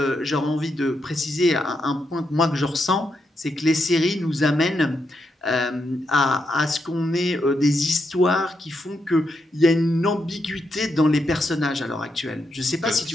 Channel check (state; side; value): normal; both; correlation 0.82